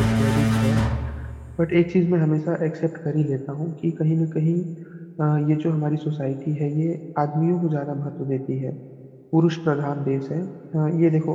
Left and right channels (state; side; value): identical; both; correlation 1.00